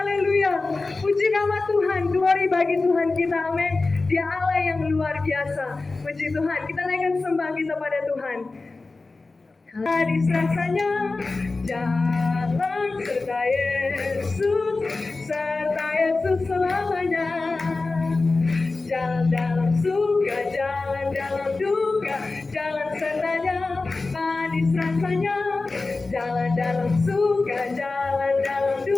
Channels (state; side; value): quieter; right; 3.6 dB